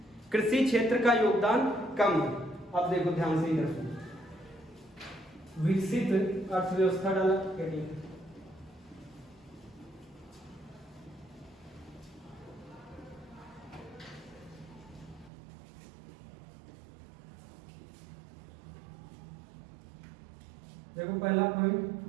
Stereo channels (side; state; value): left; drops out; at 15.3 s